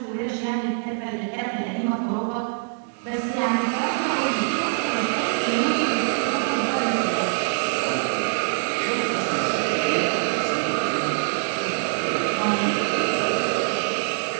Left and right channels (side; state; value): left; silent; 62 dB below the other